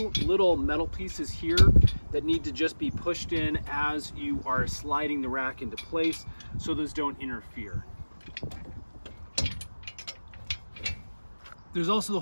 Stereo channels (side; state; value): both; inverted; correlation -1.00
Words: little metal pieces here that need to just be pushed in as you are sliding the rack into place so those don't interfere. There's also the